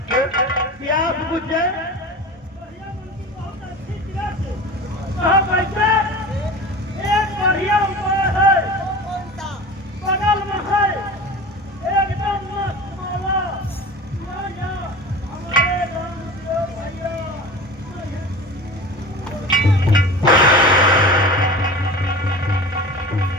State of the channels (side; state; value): both; normal; correlation 0.35